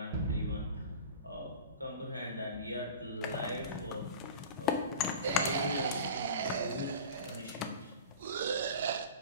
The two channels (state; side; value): inverted; both; correlation -0.35